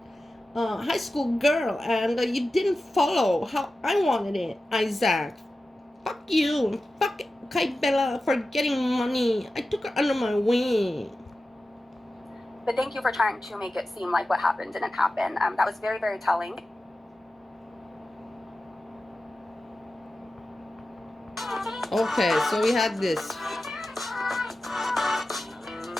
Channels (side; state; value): both; normal; correlation 0.94